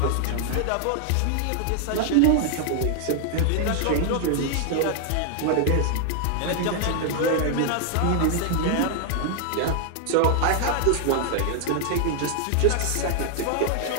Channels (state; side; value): different; both; correlation 0.00